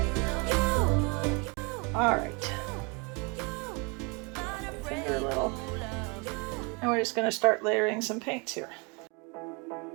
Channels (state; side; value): quieter; left; 31.1 dB